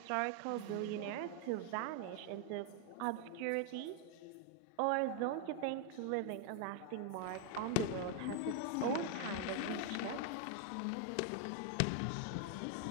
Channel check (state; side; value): different; both; correlation 0.00